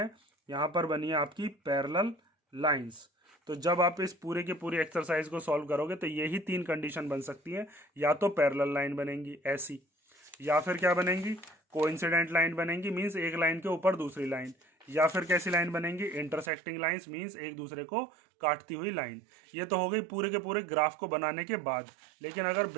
यहाँ पर बनी है आपकी पैरेलल लाइंस। तो जब आप इस पूरे के पूरे एक्सरसाइज को सॉल्व करोगे तो यही 3 कंडीशन बन सकती है, या तो पैरेलल लाइन बनेंगी ऐसी, या फिर क्या बनेंगी कोइंसिडेंट लाइन बनेंगी, मींस एक लाइन के ऊपर दूसरी लाइन, या फिर कैसी लाइन बनेंगी इंटरसेक्टिंग लाइंस, मींस एक दूसरे को काटती हुई लाइन। ये तो हो गई पूरे के पूरे ग्राफ को बनाने के बाद। लेकिन अगर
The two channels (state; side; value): drops out; left; at 16.5 s